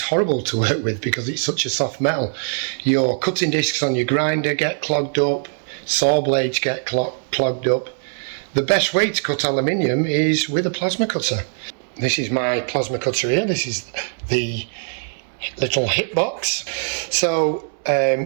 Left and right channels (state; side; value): silent; left; digital silence